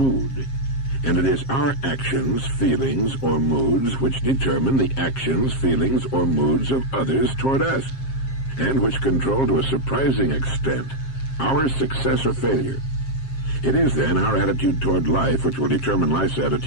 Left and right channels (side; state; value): right; late; 7.5 ms